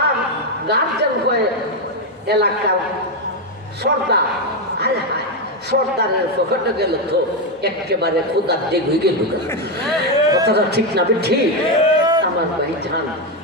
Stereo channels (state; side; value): normal; both; correlation 0.07